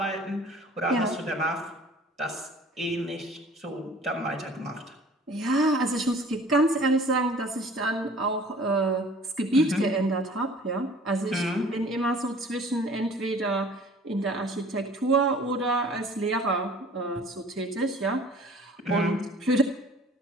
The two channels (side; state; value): both; normal; correlation 0.49